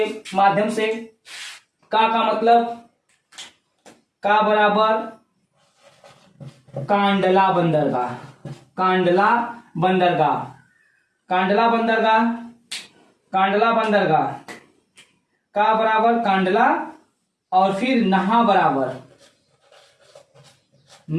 माध्यम से। का मतलब का बराबर कांडला बंदरगाह। कांडला बंदरगाह, कांडला बंदरगाह, कांडला बंदरगाह का बराबर कांडला और फिर नहा बराबर,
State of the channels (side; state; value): both; identical; correlation 1.00